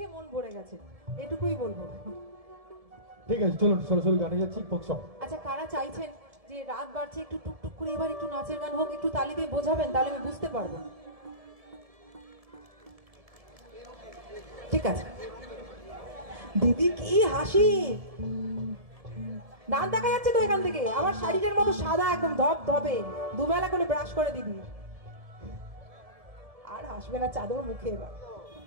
মন ভরে গেছে, এটুকুই বলবো। ঠিক আছে, চলুন সরাসরি গানে যাচ্ছি, ফোক সং। আচ্ছা, কারা চাইছেন যে রাত বাড়ছে একটু টুকটুক করে এবার একটু নাচের গান হোক, একটু তালি দিয়ে বোঝাবেন, তাহলে আমি বুঝতে পারবো। ঠিক আছে দিদি, কি হাসি, দাঁত দেখা যাচ্ছে তো এখান থেকে, আমার শাড়িটার মতো সাদা একদম ধপ ধপে, দুবেলা করে ব্রাশ করে দিদি। আর হাসবে না চাদর মুখে। এবার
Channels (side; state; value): left; late; 1.7 ms